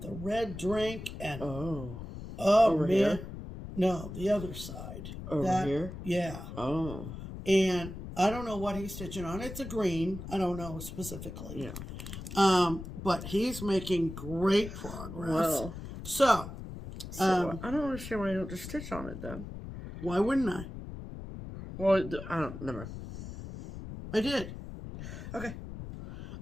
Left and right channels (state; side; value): noise; left; rumble, 10 dB below the sound